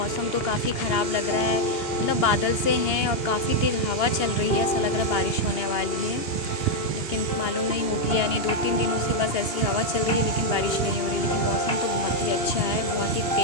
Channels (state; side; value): late; right; 2.8 ms